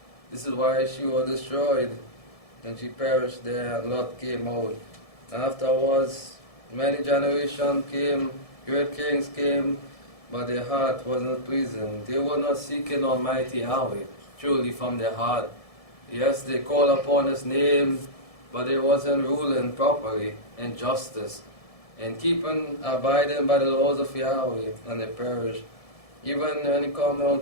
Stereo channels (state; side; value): late; right; 1.7 ms